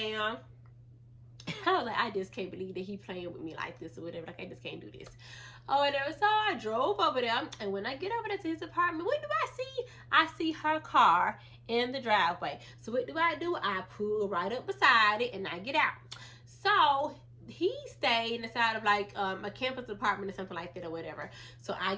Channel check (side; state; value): both; identical; correlation 1.00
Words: I was like, I just can't believe that he playing with me like this or whatever. Like, I just can't do this. Or whatever. So I drove over there, and when I get over there to his apartment, what do I see? I see her car in the driveway. So what do? I pull right up beside it, and I get out. So he stayed inside of like a campus apartment or something like that or whatever. So I